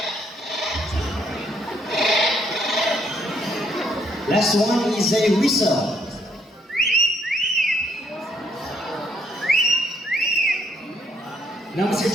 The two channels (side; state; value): both; normal; correlation 0.71